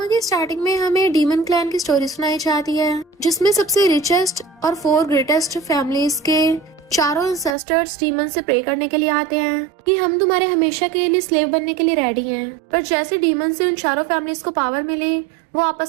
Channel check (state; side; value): drops out; left; at 7.6 s